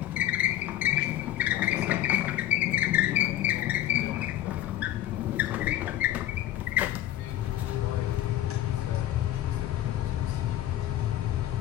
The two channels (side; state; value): right; quieter; 12.9 dB